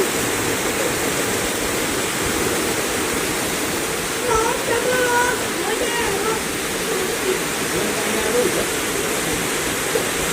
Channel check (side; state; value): both; identical; correlation 1.00